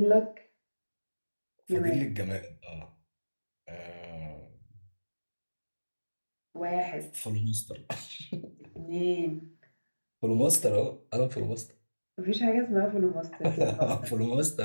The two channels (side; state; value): both; inverted; correlation -1.00